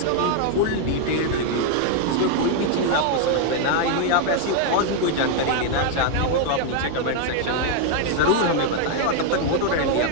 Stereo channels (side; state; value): both; different; correlation 0.00